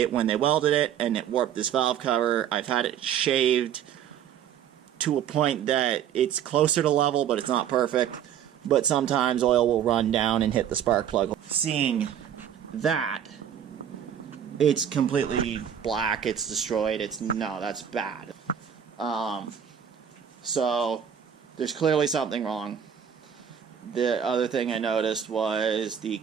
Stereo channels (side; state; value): left; quieter; 9.0 dB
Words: when they welded it, and it warped this valve cover. I've had it shaved to a point that it's closer to level, but it's not perfect. But sometimes oil will run down and hit the spark plug. Seeing that, it's completely black, it's destroyed, no, that's bad. So there's clearly something wrong. The other thing I noticed was the